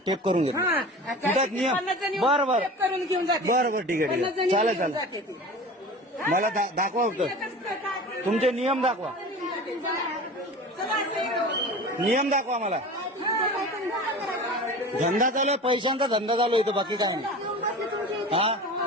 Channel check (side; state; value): both; normal; correlation 0.36